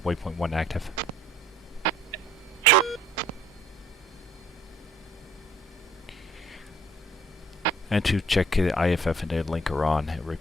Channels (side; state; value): both; normal; correlation 0.58